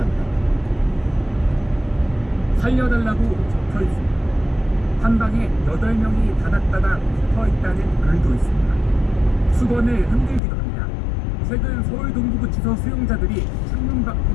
살려달라고 적혀 있습니다. 한 방에 8명이 다닥다닥 붙어 있다는 글도 있습니다. 수건을 흔들기도 합니다. 최근 서울 동부구치소 수용자들이 창문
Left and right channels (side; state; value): right; drops out; at 10.4 s